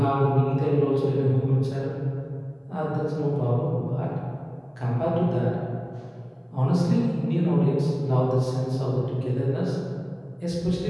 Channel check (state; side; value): identical; both; correlation 1.00